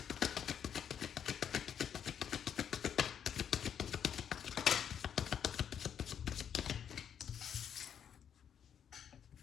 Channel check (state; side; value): quieter; right; 8.5 dB